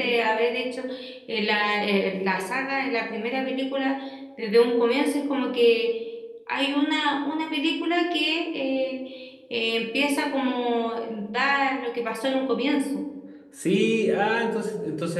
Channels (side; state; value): both; identical; correlation 1.00